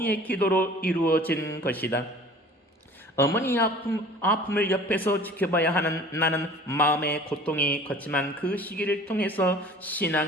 기도로 이루어진 것이다. 어머니의 아픔을 옆에서 지켜봐야 하는 나는 마음의 고통이 컸지만 그 시기를 통해서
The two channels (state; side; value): normal; both; correlation 0.46